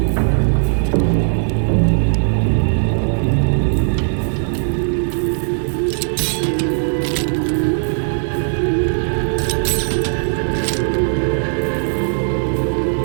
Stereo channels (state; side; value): silent; left; digital silence